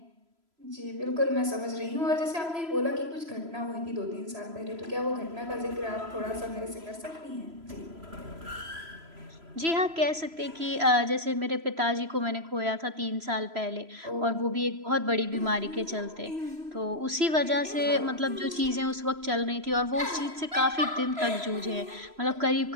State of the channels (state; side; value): late; left; 3.0 ms